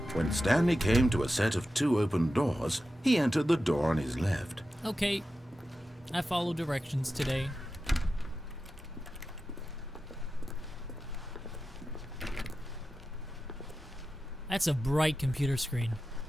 When Stanley came to a set of 2 open doors, he entered the door on his left. Okay. I follow directions today. That's a bright computer screen.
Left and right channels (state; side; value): normal; both; correlation 0.92